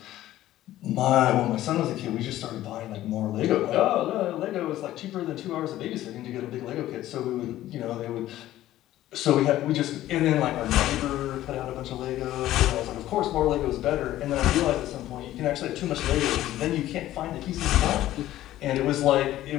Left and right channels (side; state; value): right; quieter; 14.2 dB